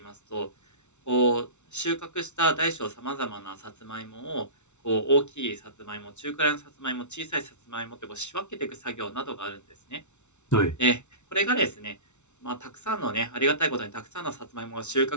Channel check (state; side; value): late; right; 0.82 ms